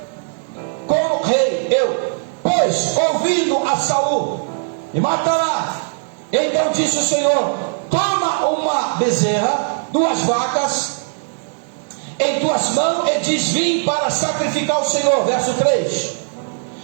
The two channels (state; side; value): silent; left; digital silence